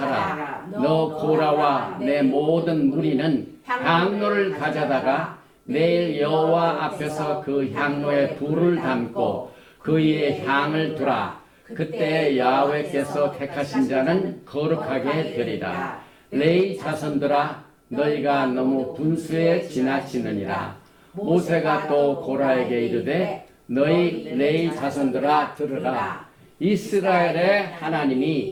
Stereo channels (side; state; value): both; identical; correlation 1.00